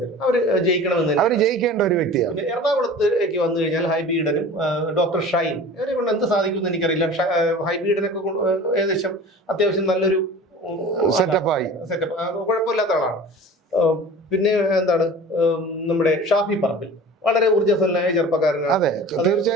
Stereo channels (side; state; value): both; normal; correlation 0.40